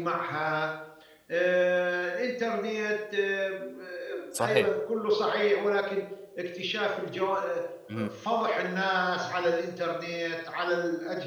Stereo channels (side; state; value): both; identical; correlation 1.00